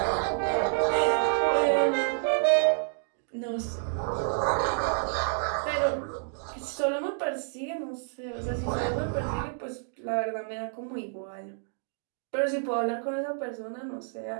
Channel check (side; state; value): left; silent; digital silence